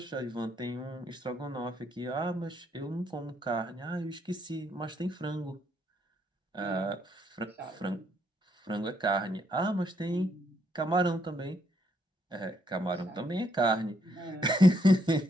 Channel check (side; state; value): both; normal; correlation 0.73